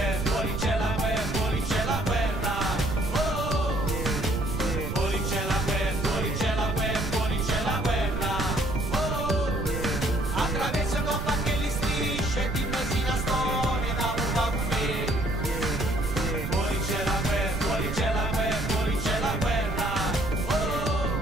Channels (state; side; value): noise; right; rumble, 4 dB below the sound